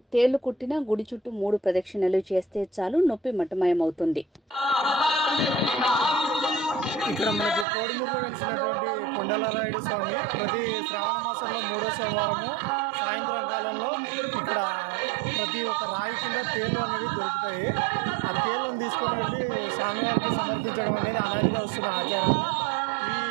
తేళ్లు కుట్టిన గుడి చుట్టూ 3 ప్రదక్షిణలు చేస్తే చాలు, నొప్పి మటమయమవుతుంది. ఇక్కడ మనకి కోడుమూరులో వెలిసినటువంటి కొండలరాయుడు స్వామి ప్రతి శ్రావణ మాసంలో 3వ సోమవారము సాయంత్రం కాలంలో ఇక్కడ ప్రతి ఒక్క రాయి కింద తేళ్లు అనేవి దొరుకుతాయి. ఆ తేళ్లను తీసుకొని వెళ్ళి స్వామివారికి సమర్పించడం అనేది అలాగే వస్తున్న ఆచారం. ఈ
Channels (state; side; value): drops out; left; at 7.7 s